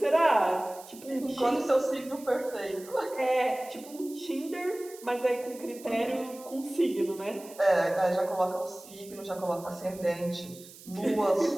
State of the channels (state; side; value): noise; right; hiss, 19 dB below the sound